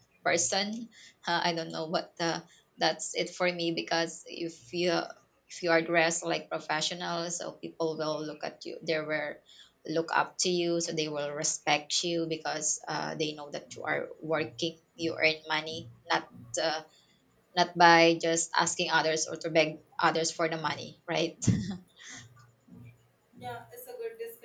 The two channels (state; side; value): identical; both; correlation 1.00